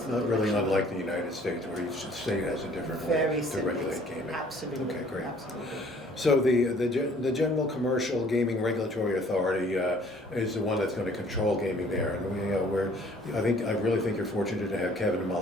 not really unlike the United States, where each state has a different way to regulate gaming. Absolutely. Okay, great. Absolutely. So the General Commercial Gaming Regulatory Authority is the one that's going to control gaming there, and I really think you're fortunate to have Kevin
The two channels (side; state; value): both; normal; correlation 0.57